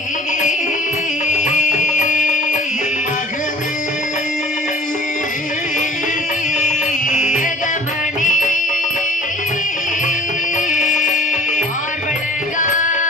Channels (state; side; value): normal; both; correlation 0.50